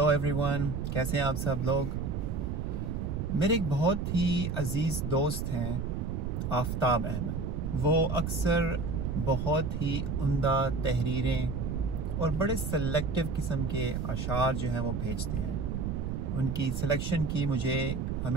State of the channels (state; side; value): noise; right; rumble, 2 dB below the sound